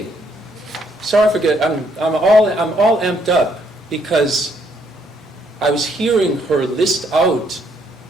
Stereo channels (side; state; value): both; normal; correlation 0.70